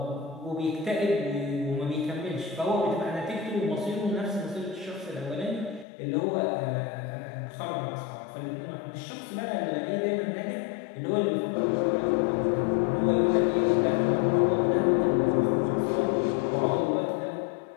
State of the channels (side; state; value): right; drops out; at 5.9 s